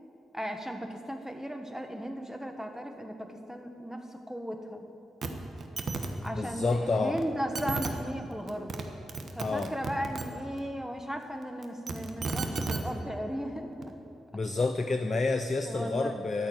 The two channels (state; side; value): normal; both; correlation 0.89